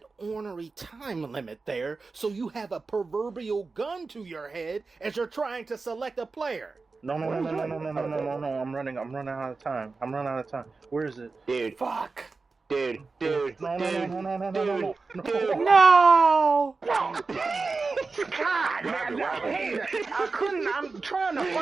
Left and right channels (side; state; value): left; quieter; 4.1 dB